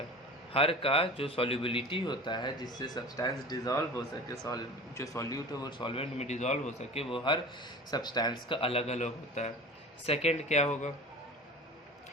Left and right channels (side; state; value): both; normal; correlation 0.37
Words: हर का जो सॉल्युबिलिटी होता है जिससे सब्सटेंस डिज़ोल्व हो सके, जो सॉल्यूट है वो सॉल्वेंट में डिज़ोल्व हो सके, वो हर सब्सटेंस का अलग अलग होता है। सेकंड क्या होगा,